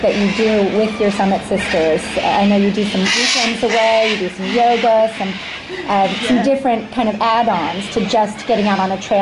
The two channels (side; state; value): both; identical; correlation 1.00